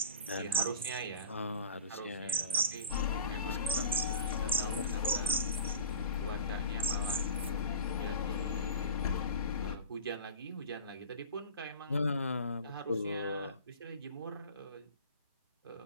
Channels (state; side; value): inverted; both; correlation -0.39